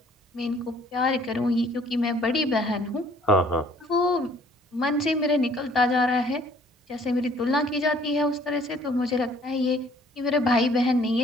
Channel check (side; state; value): both; normal; correlation 0.58